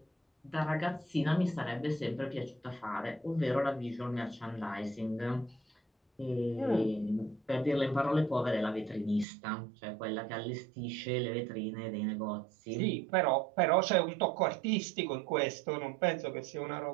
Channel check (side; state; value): left; drops out; at 9.2 s